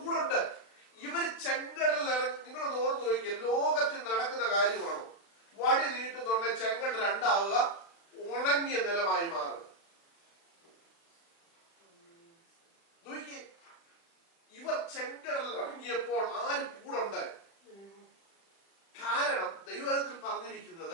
കൂടെ ഉണ്ട്. ഇവര് ചെങ്കടലിൽ ഇറങ്ങി. നിങ്ങളൊന്ന് ഓർത്ത് നോക്കിക്കേ, ലോകത്തിൽ നടക്കുന്ന കാര്യമാണോ? ചെങ്കൽ രണ്ടാവുക, ഉണങ്ങിയ നിലമായി മാറുക. നോക്കിയേ, ഇവർ ചെങ്കടലിൽ ഇറങ്ങിയപ്പോൾ ആര് കൂടുണ്ട്? കാരണം ദൈവത്തിൽ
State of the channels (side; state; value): right; late; 36 ms